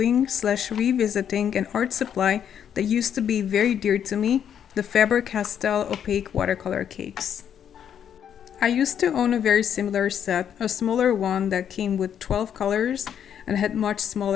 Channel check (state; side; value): quieter; right; 8.9 dB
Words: / revisiting an art supply that used to be very dear to me, the Faber Castell opaque watercolor cakes. I used to own a very similar set, a smaller one that came with 12 colors and had much